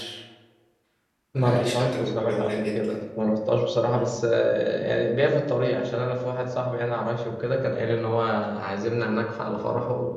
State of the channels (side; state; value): both; identical; correlation 1.00